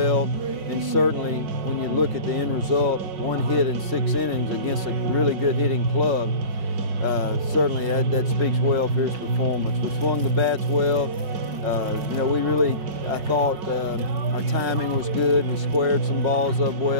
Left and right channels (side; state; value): left; late; 5.5 ms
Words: and certainly when you look at the end result, 1 hit in 6 innings against a really good hitting club, certainly that speaks well for his performance. We swung the bats well. You know, we really, I thought our timing was good. We squared some balls up